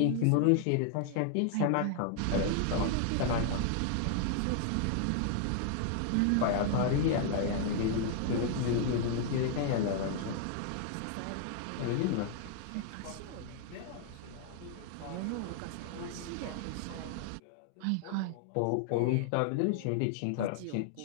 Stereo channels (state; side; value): different; both; correlation 0.00